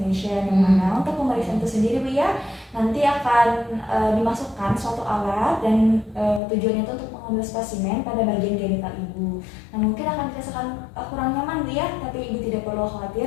yang mana untuk pemeriksaan itu sendiri Bu ya, nanti akan dimasukkan suatu alat dan tujuannya itu untuk mengambil spesimen pada bagian genital Ibu. Nah, mungkin akan dirasakan kurang nyaman Bu ya, tapi Ibu tidak perlu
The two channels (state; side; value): drops out; right; at 6.4 s